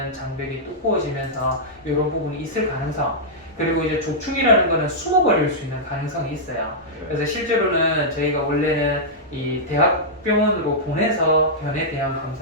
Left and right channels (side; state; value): both; normal; correlation -0.10